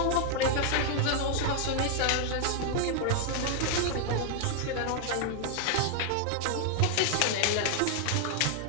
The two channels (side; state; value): both; different; correlation 0.00